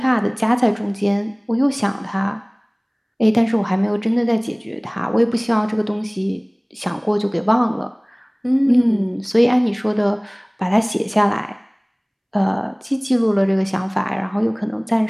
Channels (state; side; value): identical; both; correlation 1.00